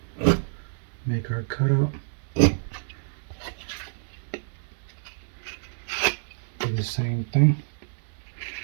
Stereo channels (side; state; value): left; silent; digital silence